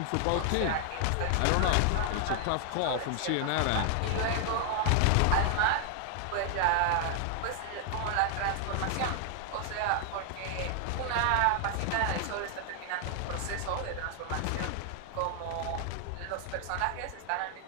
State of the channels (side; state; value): both; different; correlation 0.00